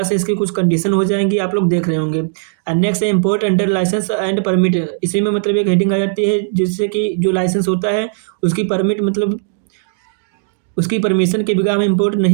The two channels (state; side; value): silent; left; digital silence